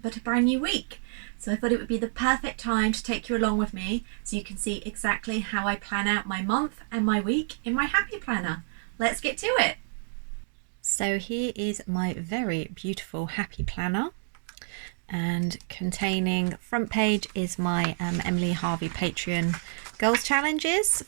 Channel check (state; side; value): silent; left; digital silence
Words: a brand new week. So I thought it would be the perfect time to take you along with me so you can see exactly how I plan out my month and my week in my Happy Planner. Let's get to it. So here is my very beautiful Happy Planner, and containing front page is my Emily Harvey Patreon goals challenges